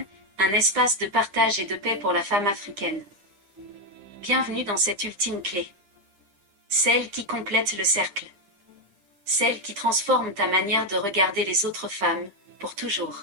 un espace de partage et de paix pour la femme africaine. Bienvenue dans cette ultime clé. Celle qui complète le cercle. Celle qui transforme ta manière de regarder les autres femmes, pour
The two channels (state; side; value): late; left; 9.9 ms